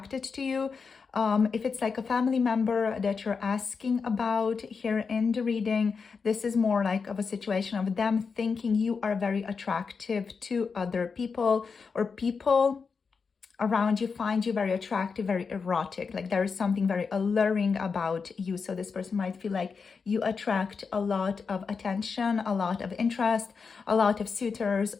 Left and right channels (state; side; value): quieter; right; 5.3 dB